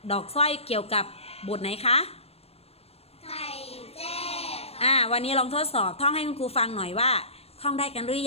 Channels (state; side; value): late; right; 0.29 ms